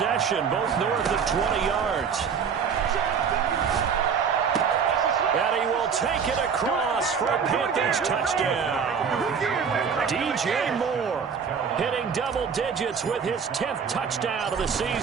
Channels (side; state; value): left; quieter; 6.5 dB